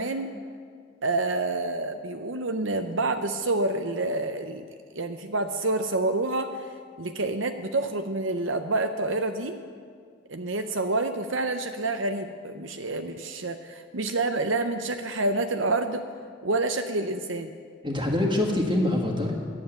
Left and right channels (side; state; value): both; normal; correlation -0.11